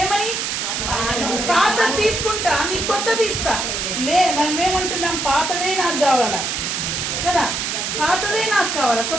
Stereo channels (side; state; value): right; noise; hiss, 2 dB below the sound